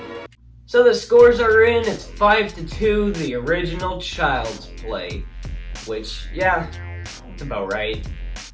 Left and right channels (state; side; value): identical; both; correlation 1.00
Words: So the scores are in, it's 5-2, the original Child's Play. Which, yeah, it's about right.